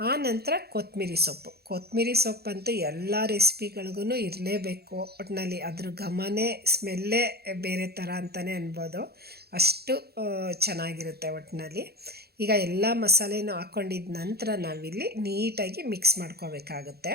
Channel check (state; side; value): late; left; 0.46 ms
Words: ನಂತರ ಕೊತ್ತಂಬರಿ ಸೊಪ್ಪಂತೂ ಎಲ್ಲ ರೆಸಿಪಿಗಳಿಗೂ ಇರಲೇಬೇಕು. ಒಟ್ಟಿನಲ್ಲಿ ಅದ್ರ ಘಮನೇ ಸ್ಮೆಲ್ಲೇ ಬೇರೆ ಥರ ಅಂತಲೇ ಅನ್ಬೋದು, ಅಷ್ಟು ಚೆನ್ನಾಗಿರುತ್ತೆ ಒಟ್ಟಿನಲ್ಲಿ. ಈಗ ಎಲ್ಲ ಮಸಾಲೆನೂ ಹಾಕ್ಕೊಂಡಿದ್ದ ನಂತರ ನಾವಿಲ್ಲಿ ನೀಟಾಗಿ ಮಿಕ್ಸ್ ಮಾಡ್ಕೋಬೇಕಾಗುತ್ತೆ.